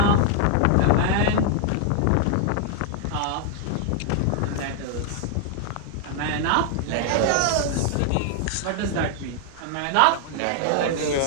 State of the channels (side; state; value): both; different; correlation 0.00